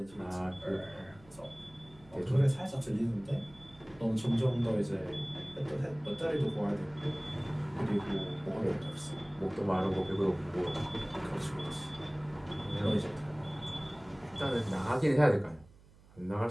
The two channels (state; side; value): noise; right; hum, 25 dB below the sound